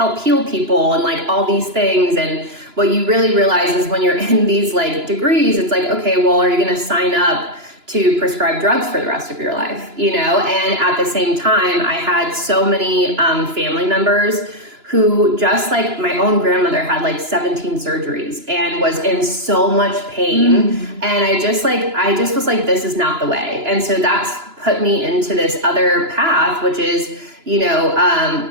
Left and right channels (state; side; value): late; left; 2.9 ms